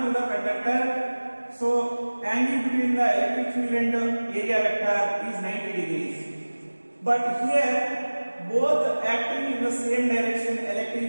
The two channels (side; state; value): both; inverted; correlation -1.00